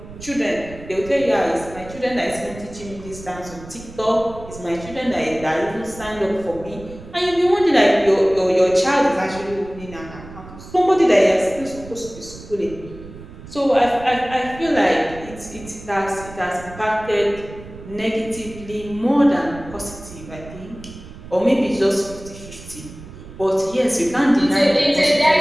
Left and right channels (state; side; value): noise; right; rumble, 16 dB below the sound